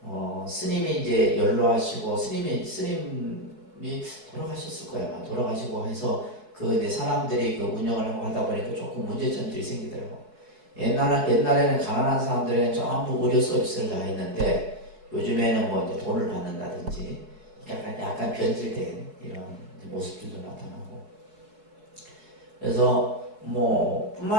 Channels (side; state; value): left; late; 4.7 ms